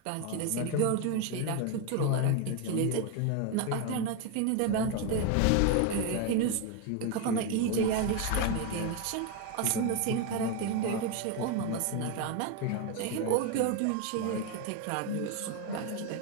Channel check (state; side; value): different; both; correlation 0.02